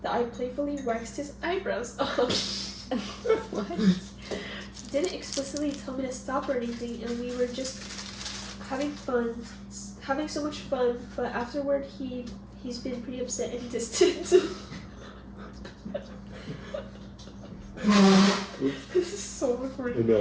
that I playfully waxed his eyebrows off. What? He didn't explicitly tell me to stop or anything, and we were just having so much fun. But afterward, he's been pretty upset and distant. This is so awkward. I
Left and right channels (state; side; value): identical; both; correlation 1.00